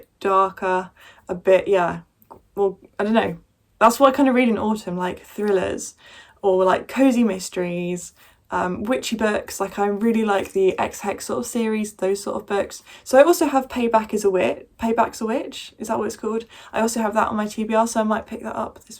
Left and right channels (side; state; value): both; identical; correlation 1.00